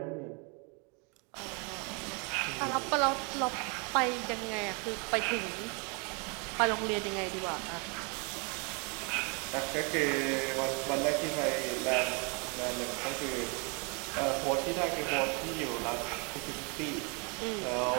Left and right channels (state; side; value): quieter; left; 33.9 dB